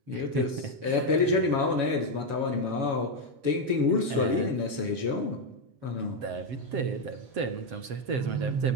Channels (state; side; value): late; left; 7.2 ms